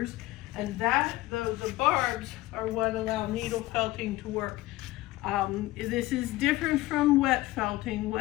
and the barbs are what allow needle felting to work. This is different from wet felting.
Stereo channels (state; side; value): quieter; right; 17.9 dB